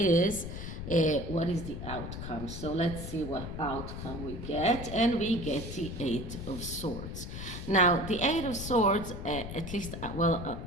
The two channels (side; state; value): left; noise; rumble, 7 dB below the sound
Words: what is the outcome. So let's see what outcome we get. And we get the Eight of Swords. Now, the Eight of Swords, at least,